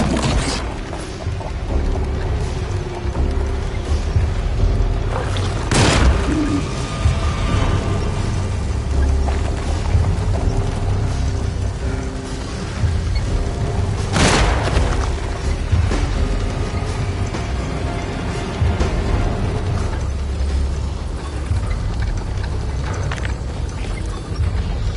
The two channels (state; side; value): identical; both; correlation 1.00